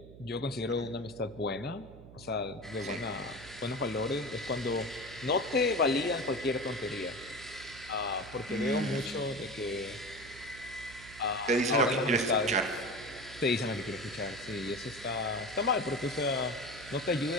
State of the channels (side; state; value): right; noise; hum, 17 dB below the sound